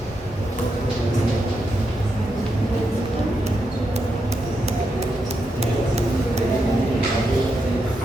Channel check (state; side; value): normal; both; correlation 0.84